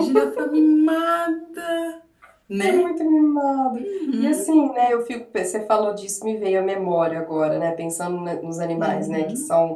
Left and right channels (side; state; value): both; identical; correlation 1.00